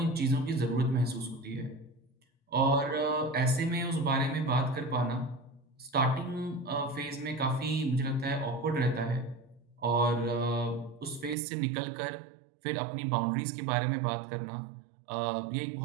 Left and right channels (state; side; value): drops out; left; at 11.4 s